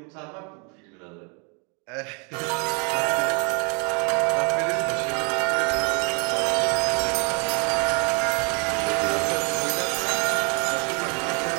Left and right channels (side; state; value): left; quieter; 34.3 dB